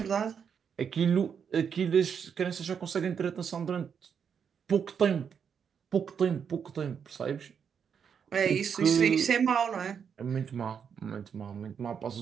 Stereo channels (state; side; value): quieter; left; 7.2 dB